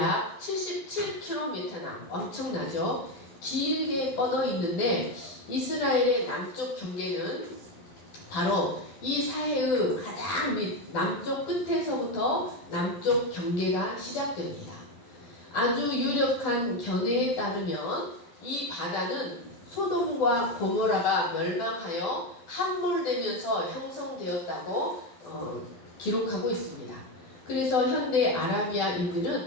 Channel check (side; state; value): right; late; 12 ms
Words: 77km나 엄청나죠. 길게 뻗어 있는데 이스라엘의 남쪽 경계는 바로 이 사해의 가장 밑 남쪽 끝에서부터 남쪽 경계가 시작됩니다. 아주 유력한 견해에 따르면 이 바다는 소돔과 고모라가 멸망하여 함몰되면서 형성되었다고 기록하고 있습니다. 그래서 현대